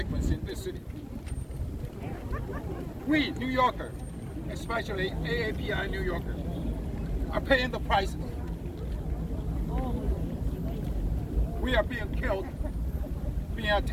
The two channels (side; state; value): both; identical; correlation 1.00